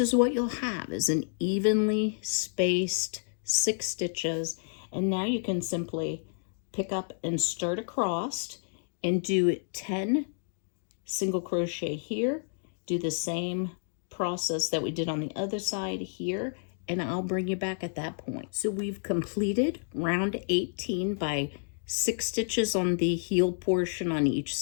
what you'll have, is an evenly spaced 6 stitches. And now you can simply pick up and start across and do 10 single crochet here. Do the same process that we did on the other side here, and I'll bring you back at that point. So we've completed round 18 by 6 stitches on the heel portion on each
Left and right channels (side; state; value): right; silent; digital silence